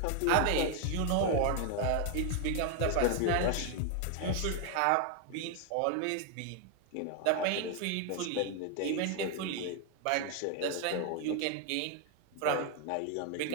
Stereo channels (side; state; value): both; different; correlation 0.00